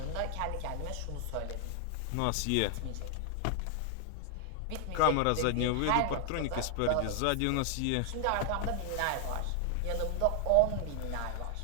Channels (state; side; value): different; both; correlation 0.00